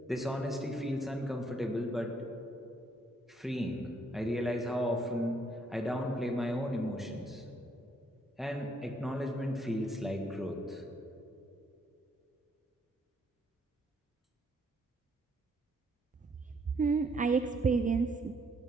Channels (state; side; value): normal; both; correlation 0.70